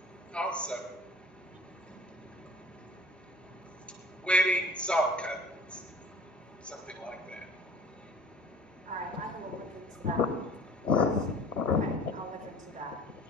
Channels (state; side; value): normal; both; correlation 0.47